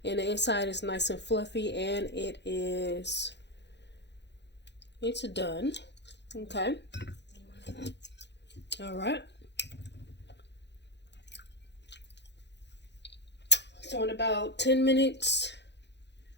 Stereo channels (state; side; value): late; right; 0.50 ms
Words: and the inside is nice and fluffy, and it's done. Okay. All right. So in about 10 minutes,